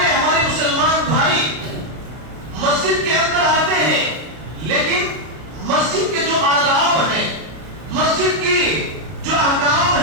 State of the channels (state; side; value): late; left; 33 ms